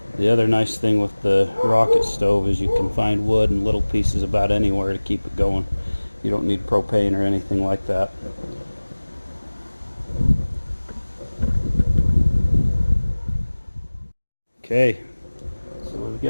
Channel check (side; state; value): both; inverted; correlation -1.00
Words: The other nice thing with the rocket stove is you can find wood in little pieces about anywhere to keep it going. You don't need propane or anything like that. Okay, so we've